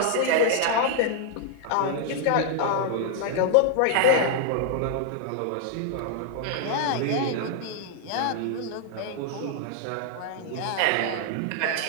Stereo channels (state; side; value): different; both; correlation 0.00